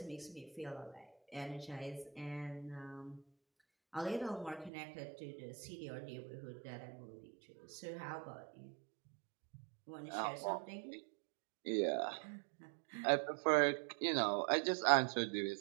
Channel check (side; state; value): left; drops out; at 4.7 s